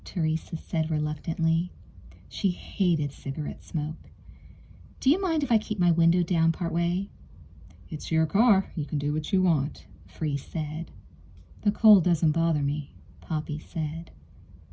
Teresa said reluctantly. She hated cigarette smoke. "Do you mind if I keep my window down part way?" "It's your car. You can do what you want," Free said. "The cold doesn't bother me," Poppy said.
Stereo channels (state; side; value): identical; both; correlation 1.00